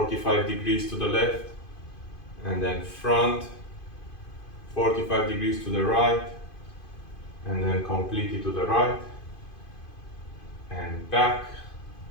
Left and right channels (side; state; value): right; late; 2.5 ms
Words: degrees to the left, and then front, 45 degrees to the right, and then completely to the right and back.